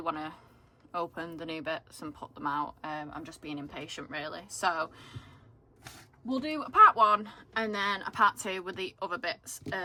to open the new bits and put them out. I'm just being impatient really, so we'll do a part one and then a part two with the other bits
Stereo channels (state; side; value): identical; both; correlation 1.00